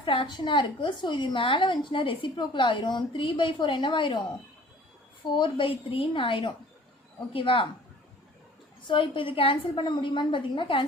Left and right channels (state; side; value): normal; both; correlation 0.50